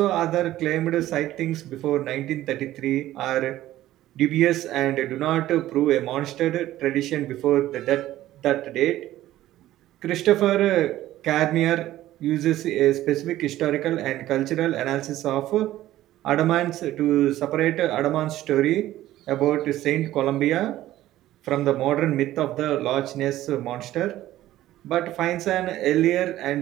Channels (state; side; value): quieter; left; 14.4 dB